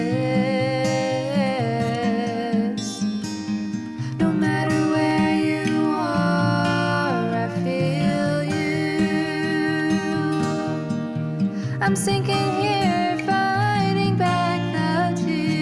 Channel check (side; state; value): both; identical; correlation 1.00